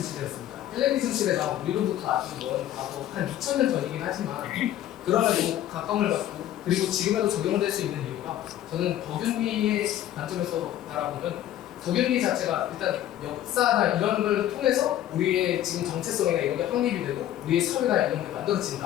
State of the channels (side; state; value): right; quieter; 12.3 dB